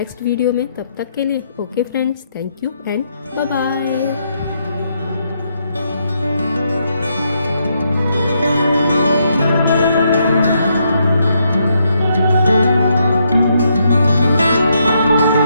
वीडियो में, तब तक के लिए okay friends, thank you and bye bye.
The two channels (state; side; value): inverted; both; correlation -0.77